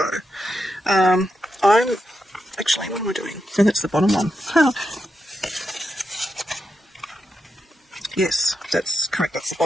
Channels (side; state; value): both; normal; correlation 0.86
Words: Actually, what am I doing? So that's the bottom one. Yes, that's correct, that's the